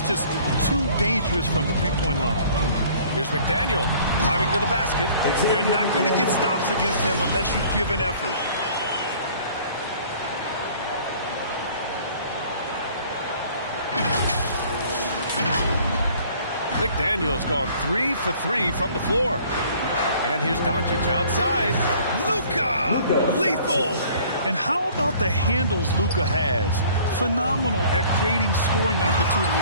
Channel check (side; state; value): both; inverted; correlation -0.53